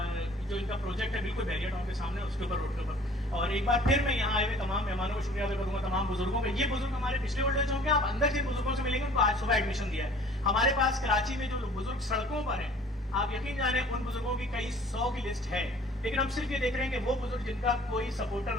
जो इनका प्रोजेक्ट है बिल्कुल बैरियर टाउन के सामने उसके ऊपर रोड के ऊपर। और एक बार फिर मैं यहाँ आए हुए तमाम मेहमानों को शुक्रिया अदा करूंगा, तमाम बुजुर्गों का। ये बुजुर्ग हमारे पिछले ओल्ड एज होम के, आप अंदर जिन बुजुर्गों से मिलेंगे उनको आज सुबह एडमिशन दिया है। हमारे पास कराची में जो बुजुर्ग सड़कों पर हैं, आप यकीन जाने उन बुजुर्गों की कई 100 की लिस्ट है। लेकिन हम सिर्फ ये देख रहे हैं कि वो बुजुर्ग जिनका कोई सपोर्टर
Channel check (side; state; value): both; normal; correlation 0.51